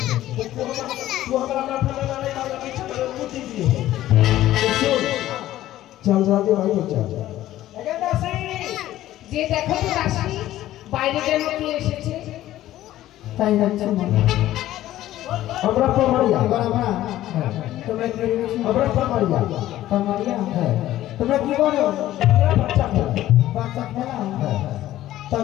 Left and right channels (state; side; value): quieter; right; 14.1 dB